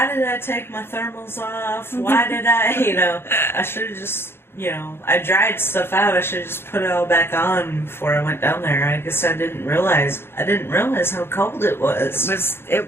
did I take my thermals off? Why did I, you know, I should have just, you know, I dried stuff out. I should have just put it all back on before I went down there. I guess I didn't realize how cold it was.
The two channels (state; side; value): late; right; 0.11 ms